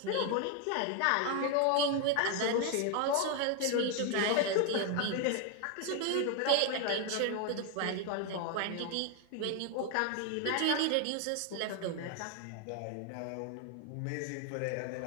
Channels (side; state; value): both; different; correlation 0.01